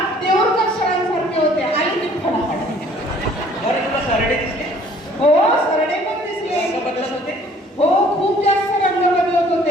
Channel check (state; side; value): normal; both; correlation 0.56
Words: देऊळकर सरांसारखे होते. आली ती फडाफड. बरं तुला सरडे दिसले? हो, सरडे पण दिसले. रंग बदलत होते? हो, खूप जास्त रंग बदलत होते.